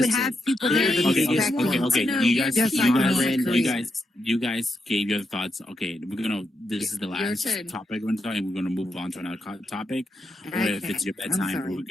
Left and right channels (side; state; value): both; normal; correlation 0.84